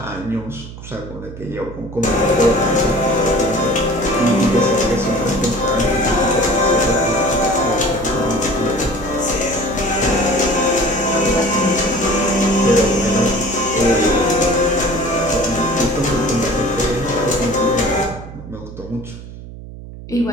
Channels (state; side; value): noise; right; hum, 14 dB below the sound